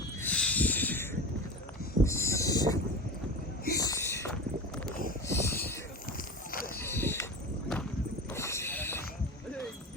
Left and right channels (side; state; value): both; normal; correlation 0.28